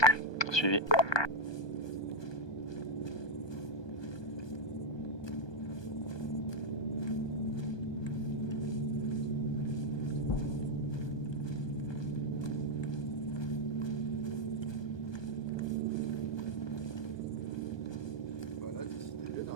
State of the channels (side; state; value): right; late; 1.2 ms